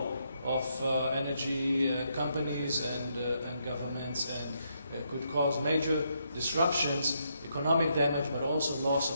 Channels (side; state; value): both; inverted; correlation -0.78